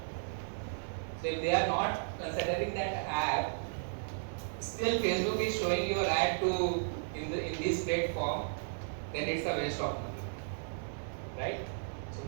So if they are not considering that app, still Facebook is showing your ad to in this platform, then it's a waste of money, right? So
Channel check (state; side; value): silent; left; digital silence